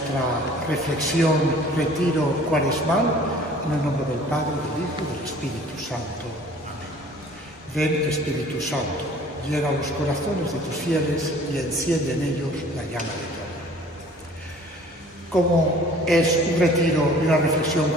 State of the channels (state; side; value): normal; both; correlation 0.51